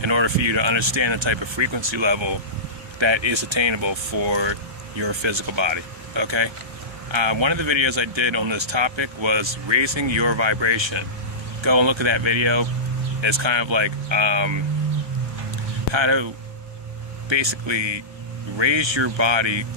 in order for you to understand the type of frequency level that is attainable for your physical body. Okay? One of the videos I did on this topic was raising your vibration. Go and look at that video. It's kind of like how to basically raise your body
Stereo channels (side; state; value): left; late; 1.3 ms